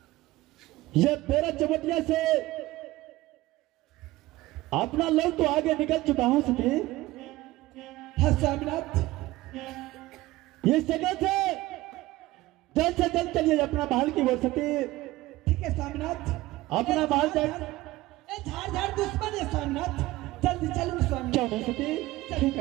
ये मेरा चमटिया से अपना लोग तो आगे निकल चुका हूं सती। हाँ स्वामीनाथ ये जगह से जल्द चलिए अपना महल की ओर सती। ठीक है स्वामीनाथ अपना महल जाए। झाड़ झाड़ दुश्मन है स्वामीनाथ जल्दी चलो स्वामी। क्यों नहीं सती? ठीक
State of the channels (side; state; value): left; quieter; 18.1 dB